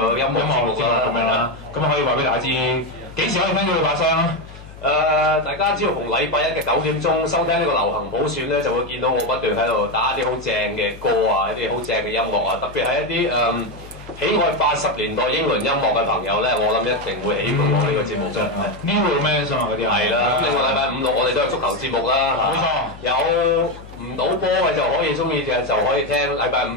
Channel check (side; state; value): left; noise; hum, 18 dB below the sound